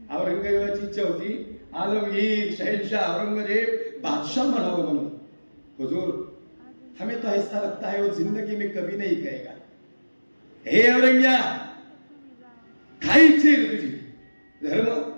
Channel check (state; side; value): inverted; both; correlation -1.00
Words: औरंगजेबाची इच्छा होती आलमगीर शहनशाह औरंगजेब बादशाह बनावं म्हणून. हुजूर हमें तो ऐसा लगता है वो जिंदगी में कभी नहीं कहेगा. हे औरंग्या खायची तुझी धर्म